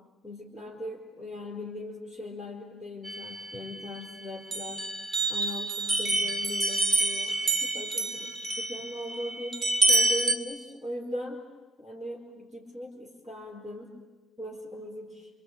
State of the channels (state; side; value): normal; both; correlation 0.68